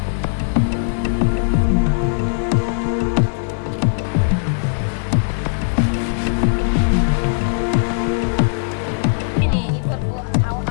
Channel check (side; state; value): right; silent; digital silence